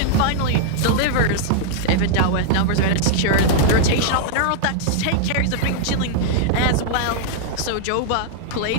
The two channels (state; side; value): different; both; correlation -0.01